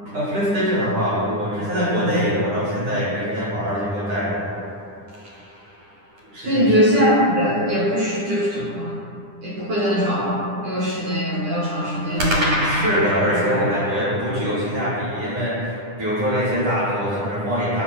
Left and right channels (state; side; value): late; left; 9.9 ms